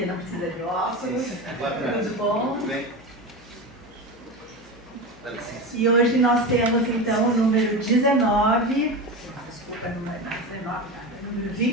não precisa de óculos. Tudo bom? Tudo bem. E hoje nós temos então o número 19, desculpa, número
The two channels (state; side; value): normal; both; correlation 0.23